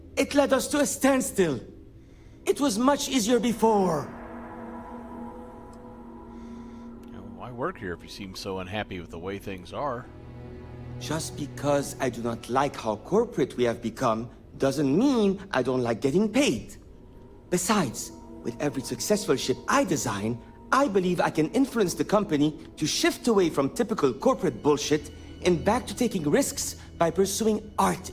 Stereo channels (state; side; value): identical; both; correlation 1.00